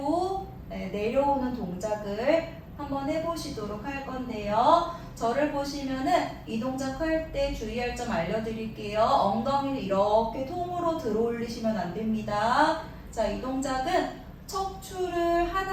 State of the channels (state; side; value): identical; both; correlation 1.00